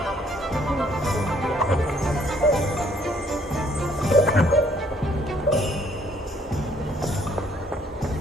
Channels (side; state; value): both; normal; correlation 0.64